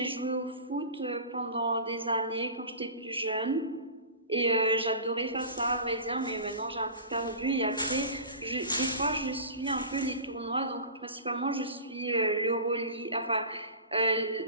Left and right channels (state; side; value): inverted; both; correlation -0.35